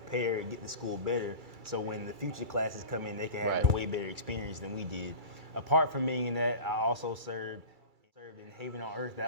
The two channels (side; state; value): left; late; 2.3 ms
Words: and get the school better, so when the future classes come in, they can have a way better experience than we did. Apart from being in that, I also served in Haven on Earth.